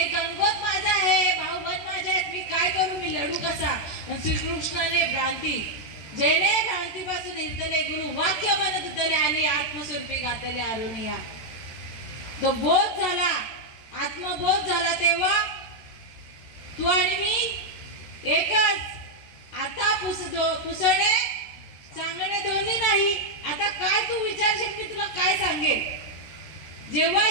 गणगोत माझं आहे, भाऊबंद माझे आहेत, मी काय करू, मी लढू कसा. श्रीकृष्णाने भ्रांती, जेणे भ्रांतीपासून हिरतले गुरु, वाक्य म्हणत उतले आणि आत्मस्वरूपी गातले अरुणिया. तो बोध झाला, आत्मबोध झाला, तेव्हा तू आणि मी एकच. आता पुसणे सांगणे दोन्ही नाही. आता काय तू विचारशील मी तुला काय सांगेल. जेव्हा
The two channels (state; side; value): late; right; 13 ms